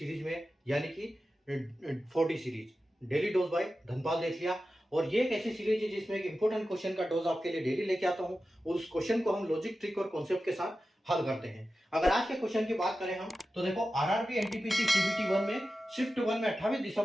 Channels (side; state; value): both; normal; correlation 0.93